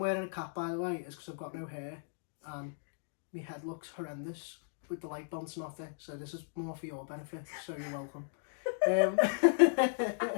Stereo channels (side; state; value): right; silent; digital silence